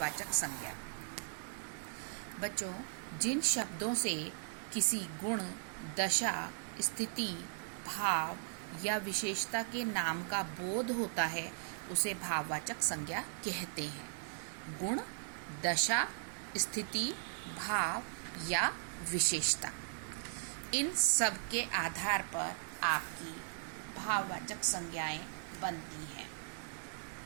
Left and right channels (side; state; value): left; silent; 52 dB below the other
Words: संज्ञा। बच्चों, जिन शब्दों से किसी गुण, दशा, स्थिति, भाव या विशेषता के नाम का बोध होता है उसे भाववाचक संज्ञा कहते हैं। गुण, दशा, स्थिति, भाव या विशेषता, इन सब के आधार पर आपकी भाववाचक संज्ञाएं बनती हैं।